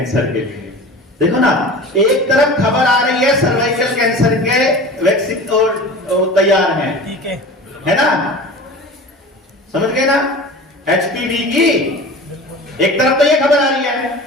के लिए। देखो ना, एक तरफ खबर आ रही है सर्वाइकल कैंसर के वैक्सीन और तैयार है ना? समझ गए ना? HPV की एक तरफ तो ये खबर आ रही है,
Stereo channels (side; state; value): both; normal; correlation 0.37